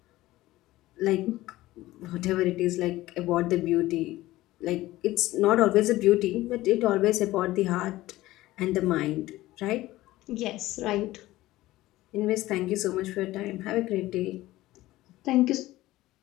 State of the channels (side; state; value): right; quieter; 17.0 dB